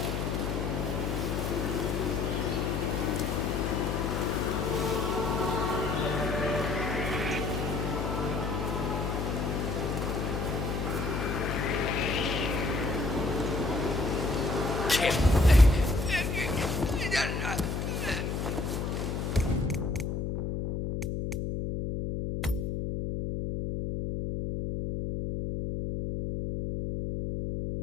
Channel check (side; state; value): left; noise; hum, 1 dB below the sound